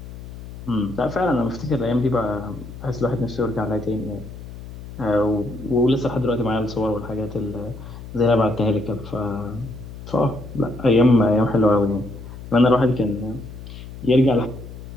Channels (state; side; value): noise; left; hum, 13 dB below the sound